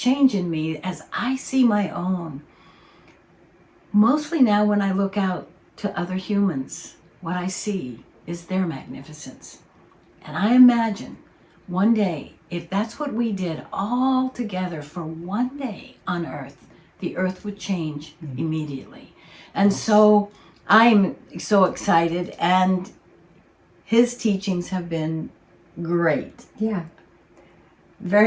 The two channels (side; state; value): both; identical; correlation 1.00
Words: in me as I see my own. Mostly now when I look out to other humans, what I see is their magnificence. And I imagine one day, if that's what we did all together for one day on earth, the earth would change immediately. And so I'm so excited, and his teachings have been great. Yeah.